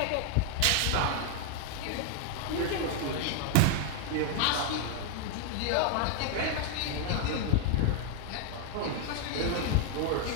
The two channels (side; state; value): both; different; correlation 0.00